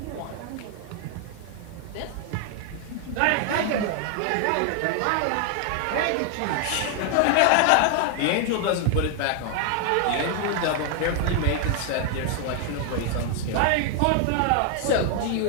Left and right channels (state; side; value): different; both; correlation 0.00